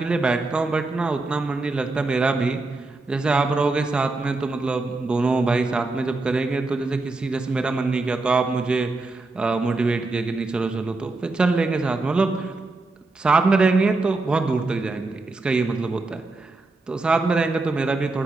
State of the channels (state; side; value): quieter; left; 3.3 dB